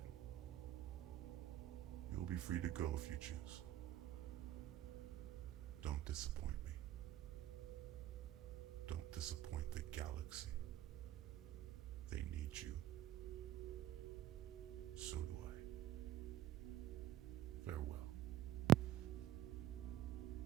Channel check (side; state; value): left; quieter; 12.6 dB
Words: you'll be free to go if you choose. Don't disappoint me. Don't disappoint the galaxy. They need you. So do I. Farewell.